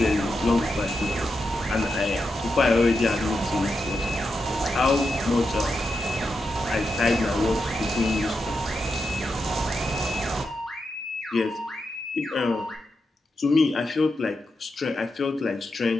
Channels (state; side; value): normal; both; correlation 0.86